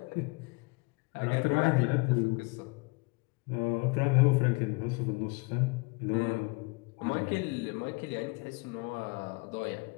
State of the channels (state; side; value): quieter; right; 27.4 dB